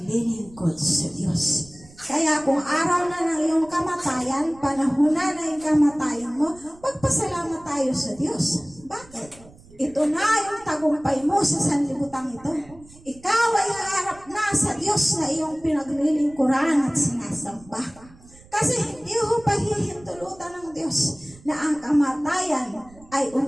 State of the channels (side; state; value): right; noise; rumble, 24 dB below the sound